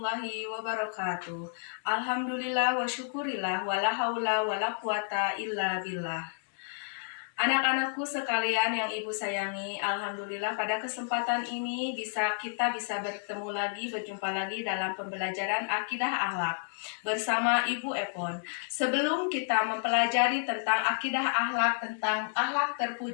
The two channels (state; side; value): silent; right; digital silence